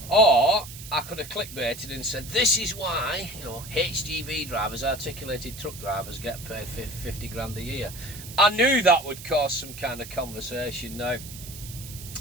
Or I could have clickbaited and said, this is why, you know, HGV drivers, articulated truck drivers, get paid 50 grand a year. I knew that would cause some kind of conversation. Now,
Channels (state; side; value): noise; right; hiss, 14 dB below the sound